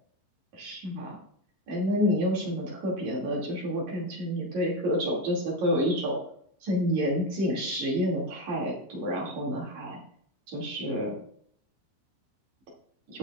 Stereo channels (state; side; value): normal; both; correlation 0.13